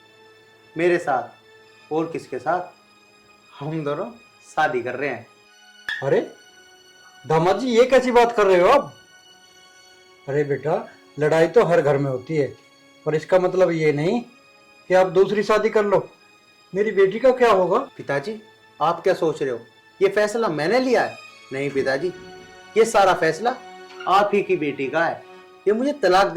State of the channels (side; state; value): both; identical; correlation 1.00